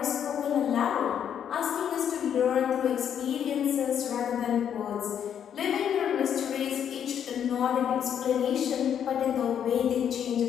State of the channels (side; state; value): right; quieter; 8.9 dB